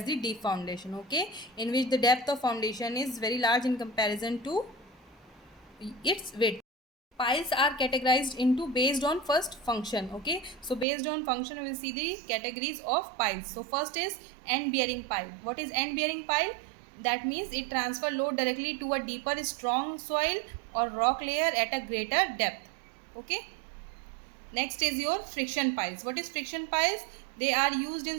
the deep foundation. Okay, in which the depth of foundation is very large in comparison to its width. Piles are categorized into based on first function. Okay, so based on function we will see the categories of piles. So first is end bearing pile. What is end bearing pile? That means it transfer load directly to a deeper strong soil or rock layer at a greater depth. Okay, next is your friction piles. What is friction piles? They are used in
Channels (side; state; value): left; drops out; at 10.9 s